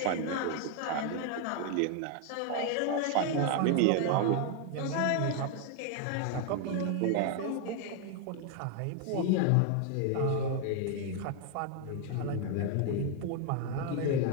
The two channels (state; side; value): different; both; correlation 0.00